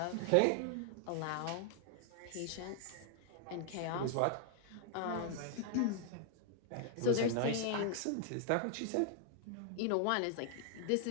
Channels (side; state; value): both; different; correlation 0.00